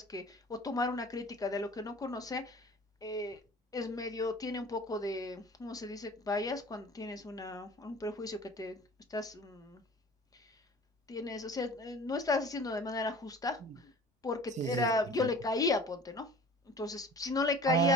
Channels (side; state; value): both; normal; correlation 0.44